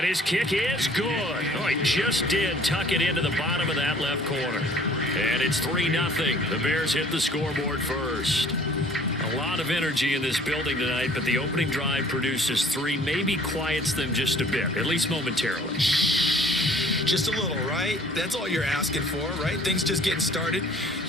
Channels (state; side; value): normal; both; correlation 0.54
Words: his kick is good. Oh, he just did tuck it into the bottom of that left corner. And it's 3-0. The Bears hit the scoreboard first. A lot of energy in this building tonight, but the opening drive produces 3, maybe quiets them just a bit, at least momentarily. Just a little, right? That's all you're asking for, right? Things just getting started.